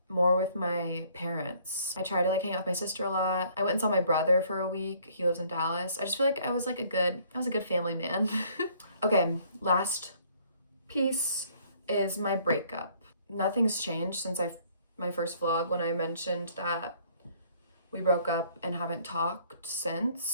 more with my parents. I try to like hang out with my sister a lot. I went and saw my brother for a week. He lives in Dallas. I just feel like I was a good family man. Okay, last piece is my breakup. Nothing's changed since my first vlog when I mentioned that we broke up and haven't talked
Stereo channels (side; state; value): both; inverted; correlation -0.61